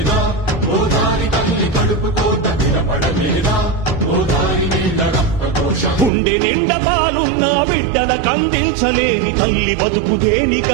గుండె నిండా పాలున్న బిడ్డల కందించలేని తల్లి బతుకు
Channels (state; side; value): drops out; left; at 6.1 s